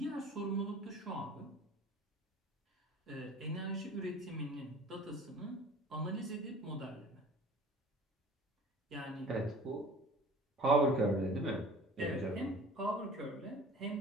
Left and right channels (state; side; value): normal; both; correlation 0.45